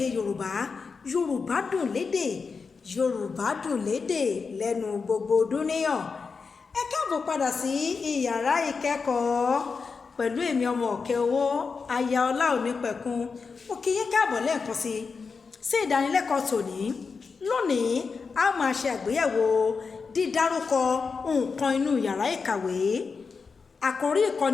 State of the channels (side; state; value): right; quieter; 5.0 dB